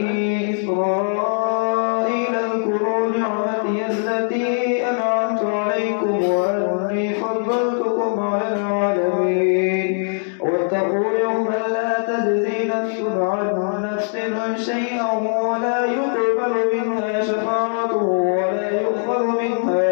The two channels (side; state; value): right; silent; 63 dB below the other